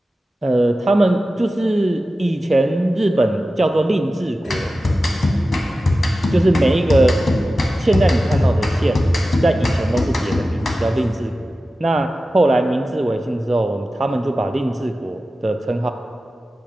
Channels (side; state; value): both; normal; correlation 0.94